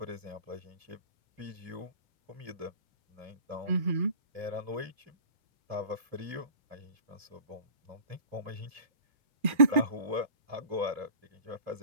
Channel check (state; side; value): late; left; 2.4 ms